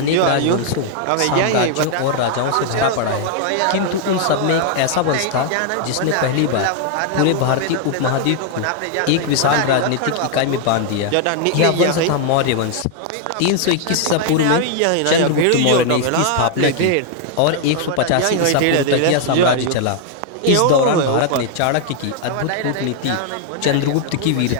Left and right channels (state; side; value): different; both; correlation 0.00